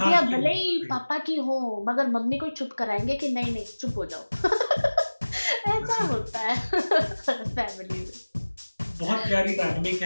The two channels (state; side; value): inverted; both; correlation -1.00